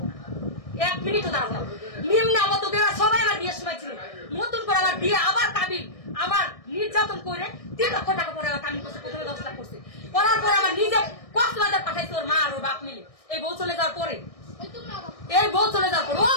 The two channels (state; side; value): late; right; 1.6 ms